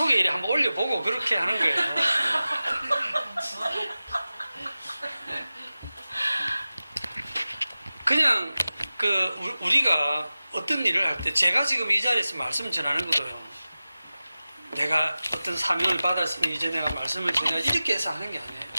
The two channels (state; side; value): inverted; both; correlation -0.96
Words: 이렇게 한번 올려보고 그렇게 하는 거예요. 그냥 우리가 어떤 일을 할 때 제가 지금 이 자리에서 말씀 전하는 것도요. 내가 어떤 사명을 받았으면 이제 내가 말씀을 전해 이렇게 해서 하는 게 아니에요.